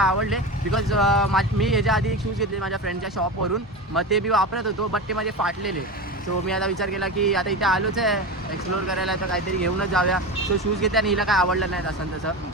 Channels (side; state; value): both; normal; correlation 0.23